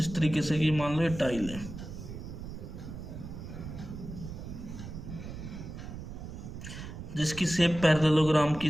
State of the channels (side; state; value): right; noise; rumble, 10 dB below the sound